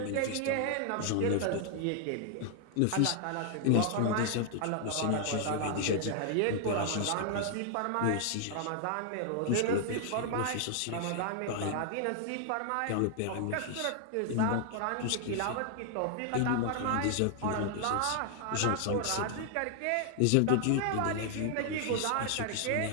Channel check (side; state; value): both; different; correlation 0.00